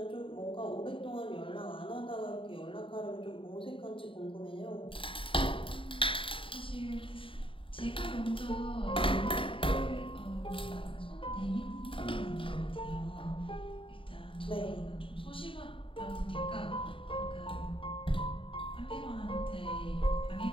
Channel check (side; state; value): right; late; 0.25 ms